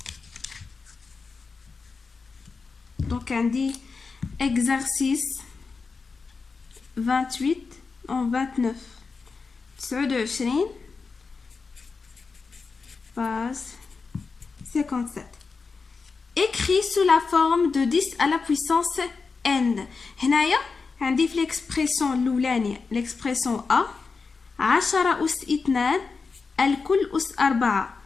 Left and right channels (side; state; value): right; quieter; 4.6 dB